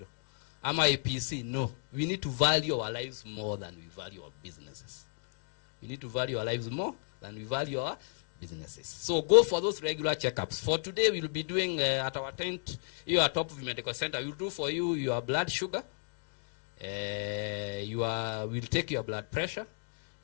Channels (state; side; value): silent; right; 56 dB below the other